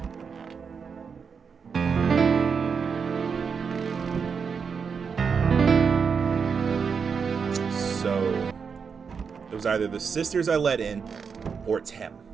was either the sisters I let in, or it's him.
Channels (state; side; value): quieter; left; 6.0 dB